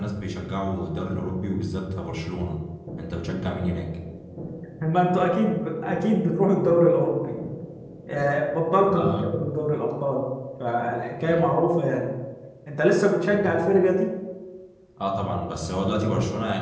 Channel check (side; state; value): both; identical; correlation 1.00